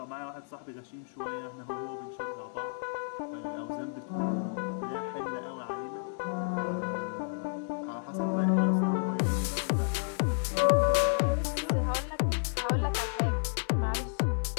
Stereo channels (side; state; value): right; silent; digital silence